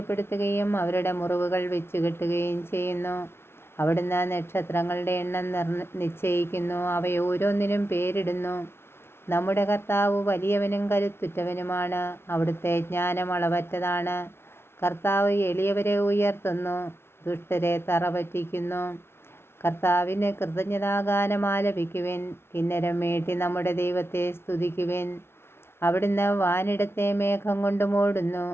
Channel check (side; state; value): right; late; 0.12 ms